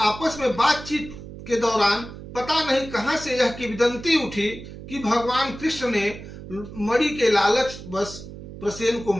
आपस में बातचीत के दौरान पता नहीं कहां से यह किंवदंती उठी कि भगवान कृष्ण ने मणि के लालच बस प्रसेन को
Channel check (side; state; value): right; noise; hum, 13 dB below the sound